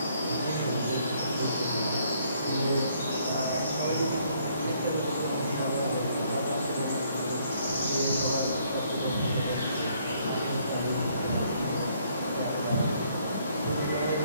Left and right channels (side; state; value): both; inverted; correlation -0.67